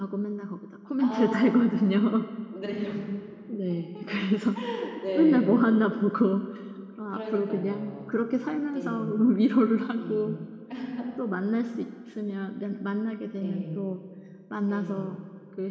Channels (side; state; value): both; identical; correlation 1.00